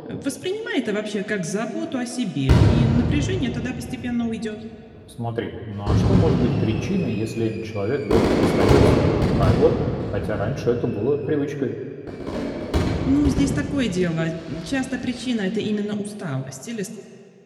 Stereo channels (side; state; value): both; identical; correlation 1.00